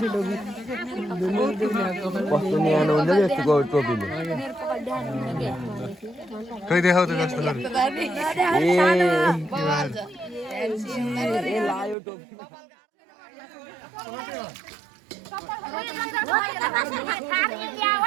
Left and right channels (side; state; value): left; drops out; at 12.0 s